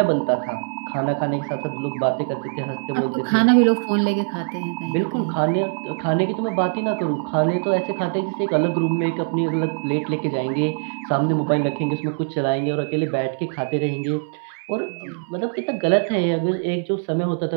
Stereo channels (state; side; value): silent; left; 64 dB below the other